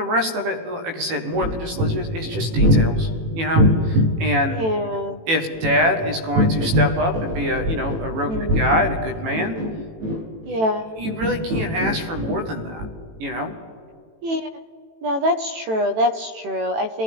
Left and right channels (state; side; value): late; left; 18 ms